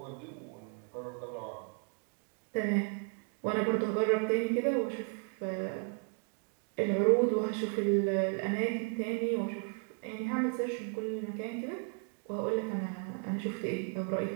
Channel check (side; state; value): left; quieter; 36.0 dB